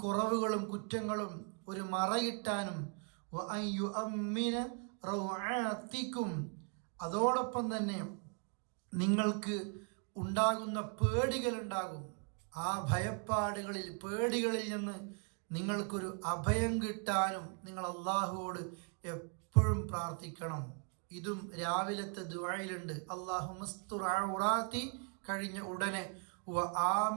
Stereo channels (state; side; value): quieter; left; 39.5 dB